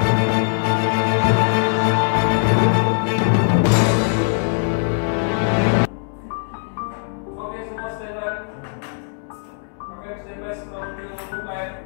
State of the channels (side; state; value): right; silent; digital silence